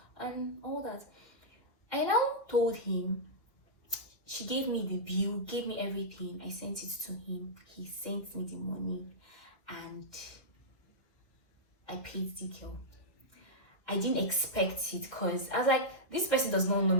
and all that. I now told him. She gave me the bill, gave me everything. I sent it to him. He sent me the money and I paid the girl. I didn't expect it because I was like, this person does not know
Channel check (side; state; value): right; late; 1.9 ms